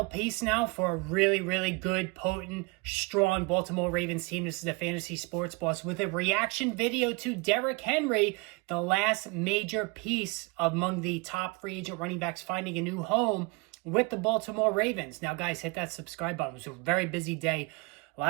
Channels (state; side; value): quieter; left; 27.1 dB